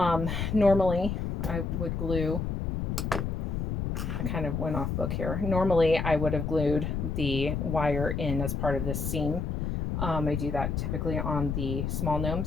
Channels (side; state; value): left; noise; rumble, 1 dB below the sound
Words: I would glue, I kind of went off book here. Normally I would have glued the wire in as part of this seam. I do that typically on the small